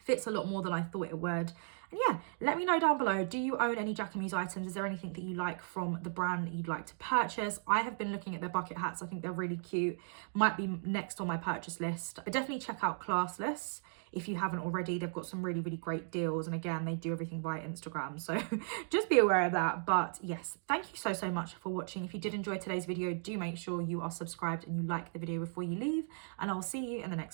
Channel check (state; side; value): silent; left; digital silence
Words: a lot more than I thought it would. And yeah, let me know down below, do you own any Jacquemus items? Is there anything that you like from the brand that you'd like to purchase? I have been looking at their bucket hats. I think they're really cute. Might be next on my purchase list. But definitely check out Classless if you haven't already. They've got some really, really great deals. And again, they do everything via Instagram. So just be aware of that. But yes, thank you so much for watching. If you did enjoy today's video, do make sure you are subscribed and you like the video before you leave. And I'll see you in the